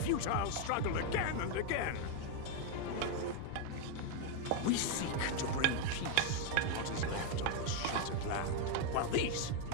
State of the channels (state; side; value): different; both; correlation 0.01